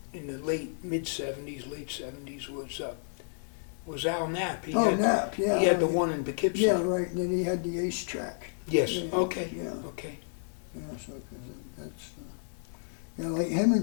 in the late 70s, was Al Knapp. Knapp, yeah. He had the one in Poughkeepsie. Yeah, right. And then he had the ace track. Yes, Yeah, okay, yeah. okay. Yeah, so 'cause that's. Like him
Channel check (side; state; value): right; silent; digital silence